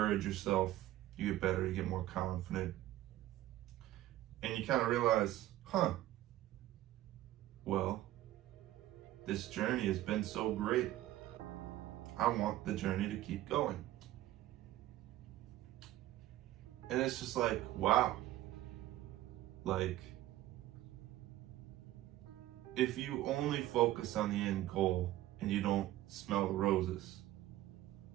yourself, you get better, you get more confident. And you kind of realize, well, this journey has been so great. I want the journey to keep going. And it's just like, wow. Like, if you only focus on the end goal and you don't smell the roses,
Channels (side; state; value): left; quieter; 14.7 dB